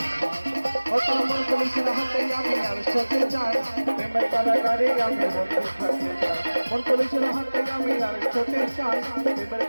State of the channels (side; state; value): both; inverted; correlation -1.00